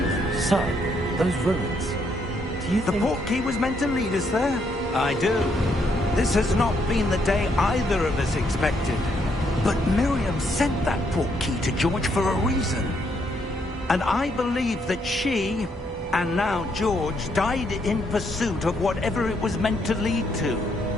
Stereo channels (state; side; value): normal; both; correlation 0.74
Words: Sir, those ruins. Do you think... The port key was meant to lead us there? I do. This has not been the day either of us expected. But Miriam sent that port key to George for a reason. And I believe that she, and now George, died in pursuit of whatever it was meant to lead to.